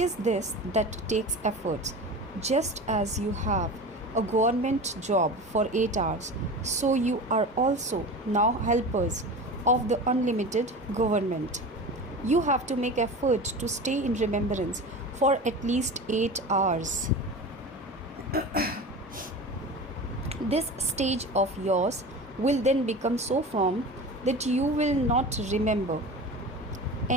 this that takes efforts. Just as you have a government job for 8 hours, so you are also now helpers of the unlimited government. You have to make effort to stay in remembrance for at least 8 hours. This stage of yours will then become so firm that you will not remember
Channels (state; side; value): normal; both; correlation 0.32